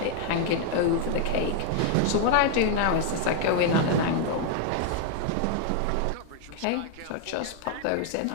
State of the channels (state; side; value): different; both; correlation 0.00